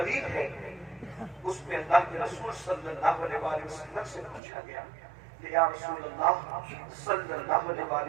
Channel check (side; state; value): left; drops out; at 4.4 s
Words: ہے، اس میں اللہ کے رسول صلی اللہ علیہ وآلہ وسلم سے پوچھا گیا کہ یا رسول اللہ صلی اللہ علیہ وآلہ